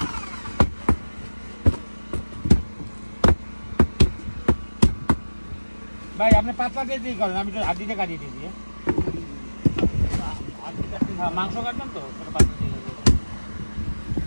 ভাই আপনি পাতলা দিয়ে করেন, আমি তো হাড্ডিটা কাটিয়ে দিয়েছি। হ্যাঁ মাংস কাটবেন তো পাতলা দিয়ে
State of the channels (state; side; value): inverted; both; correlation -1.00